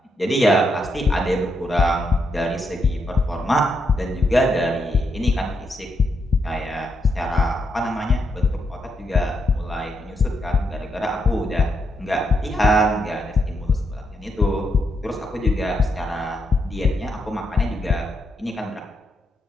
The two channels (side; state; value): both; normal; correlation 0.81